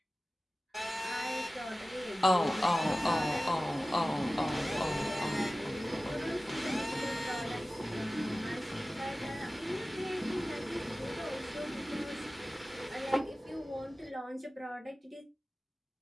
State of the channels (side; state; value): both; normal; correlation 0.96